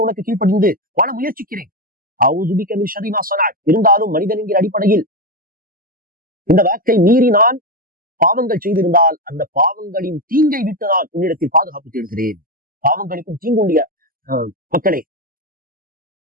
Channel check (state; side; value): late; left; 0.42 ms